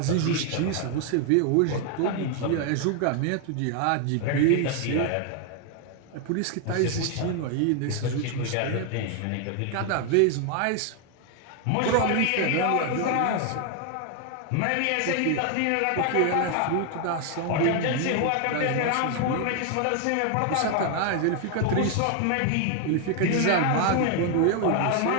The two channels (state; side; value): different; both; correlation 0.00